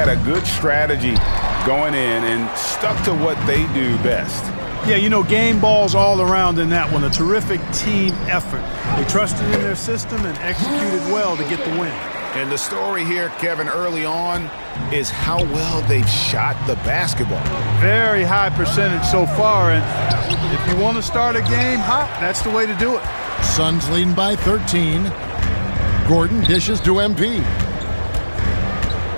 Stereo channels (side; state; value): both; inverted; correlation -1.00